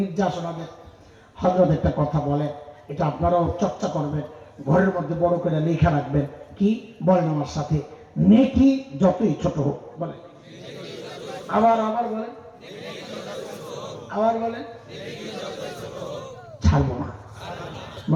নির্যাসনাদের। হযরত একটা কথা বলে, এটা আপনারাও চর্চা করবেন, ঘরের মধ্যে বড় করে লেখা রাখবেন। কি বলেন আমার সাথে? নেকি যতই ছোট হোক, বলেন আবার আবার বলেন, আবার বলেন, ছাড়বো না।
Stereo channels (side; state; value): both; identical; correlation 1.00